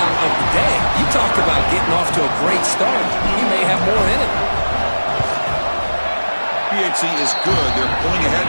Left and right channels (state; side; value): inverted; both; correlation -1.00